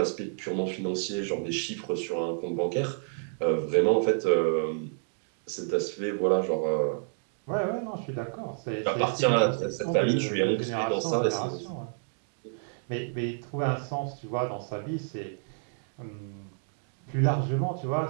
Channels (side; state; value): left; silent; digital silence